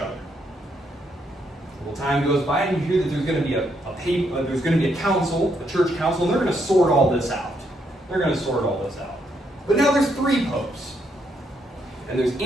A little time goes by, and you hear that there's going to be a council, a church council, and they're going to sort all this out. But now there's three popes. And there's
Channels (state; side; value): normal; both; correlation 0.75